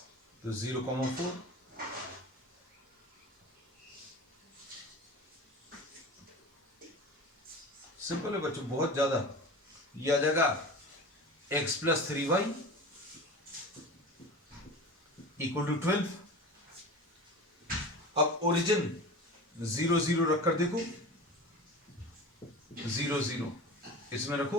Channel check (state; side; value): normal; both; correlation 0.33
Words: तो 0,4। सिंपल है बच्चों, बहुत ज्यादा। ये आ जाएगा x plus 3y equal to 12। अब ओरिजिन 0 0 रखकर देखो, 0 0 इसमें रखो,